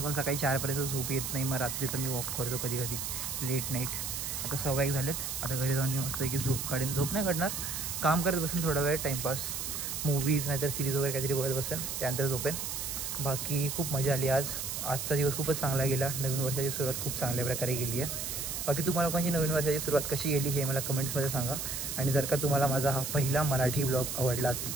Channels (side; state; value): right; noise; hiss, 4 dB below the sound